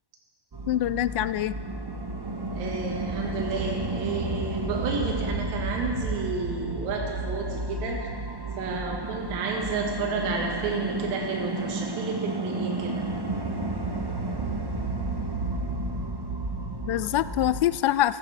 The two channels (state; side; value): late; left; 1.1 ms